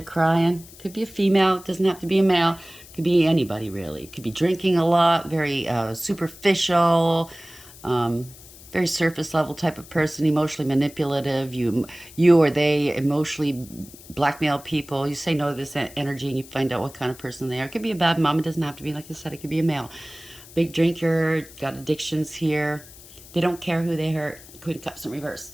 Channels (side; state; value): left; noise; hiss, 20 dB below the sound